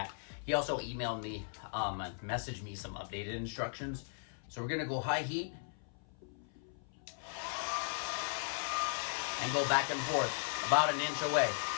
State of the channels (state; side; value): silent; right; 53 dB below the other